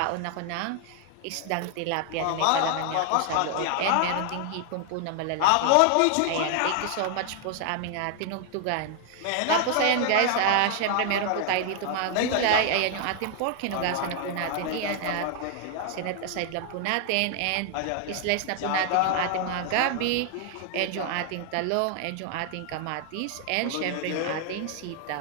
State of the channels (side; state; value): both; different; correlation 0.00